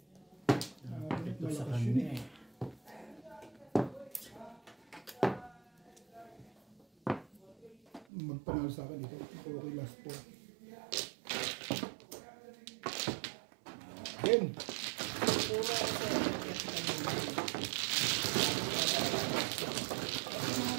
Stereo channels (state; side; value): drops out; left; at 8.1 s